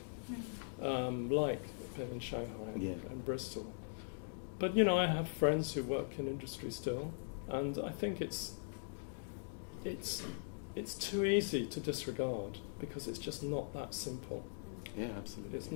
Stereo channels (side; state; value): right; silent; digital silence